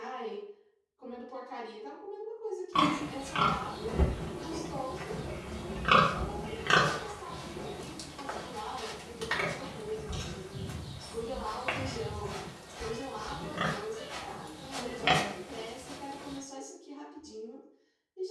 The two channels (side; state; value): both; identical; correlation 1.00